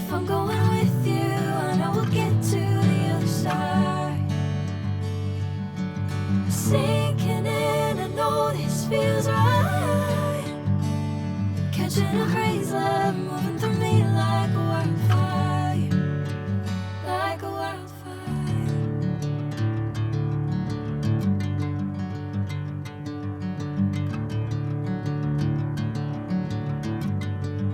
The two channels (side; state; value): both; identical; correlation 1.00